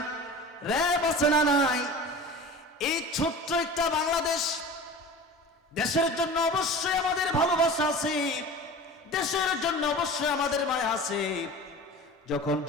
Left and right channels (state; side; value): normal; both; correlation 0.37